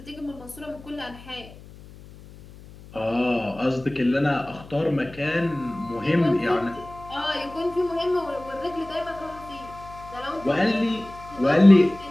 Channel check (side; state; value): left; noise; hum, 19 dB below the sound